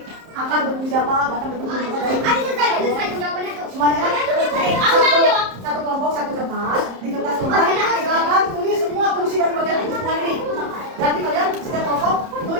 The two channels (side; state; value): left; late; 30 ms